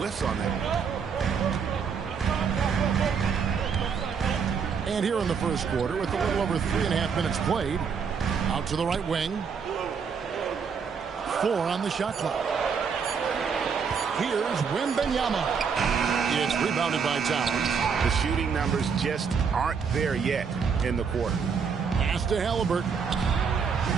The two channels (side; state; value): left; quieter; 6.2 dB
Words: on that. And here in the first quarter, with a little over 3.5 minutes played, out to the right wing. 4 on the shot clock. Here's Wembanyama. It's rebounded by Towns. The shooting numbers just aren't there yet in the quarter. Pass to Halliburton.